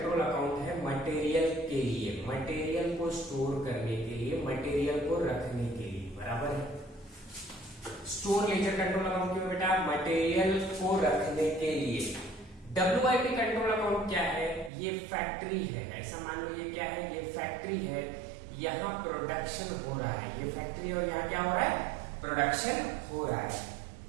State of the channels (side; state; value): left; drops out; at 14.7 s